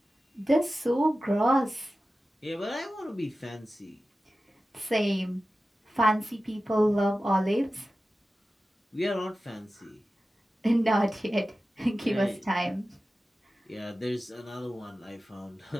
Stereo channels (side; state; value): both; normal; correlation 0.95